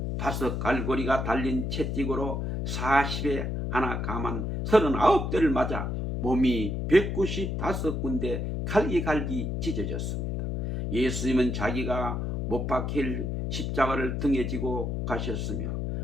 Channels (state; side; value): noise; left; hum, 2 dB below the sound